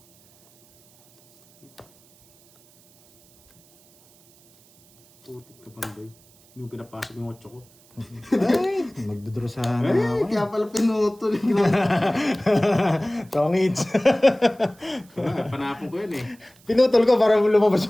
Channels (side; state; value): right; noise; hiss, 29 dB below the sound